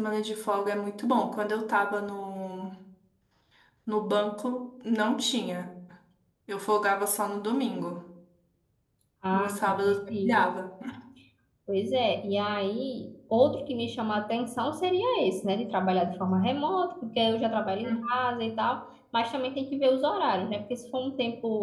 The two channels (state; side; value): identical; both; correlation 1.00